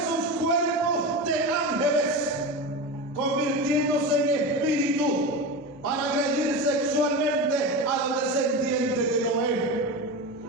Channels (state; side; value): normal; both; correlation 0.23